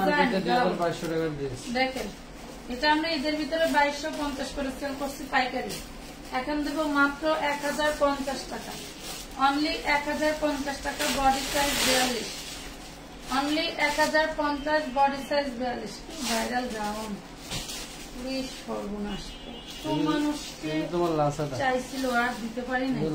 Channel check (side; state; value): both; identical; correlation 1.00